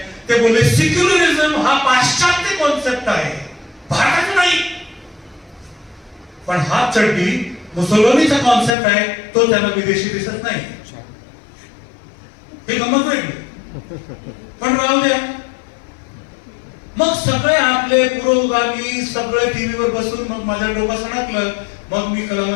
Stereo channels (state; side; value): drops out; right; at 8.7 s